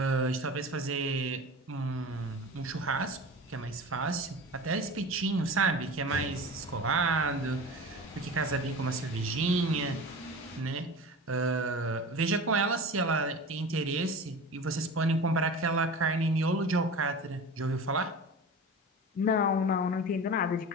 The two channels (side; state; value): both; normal; correlation 0.33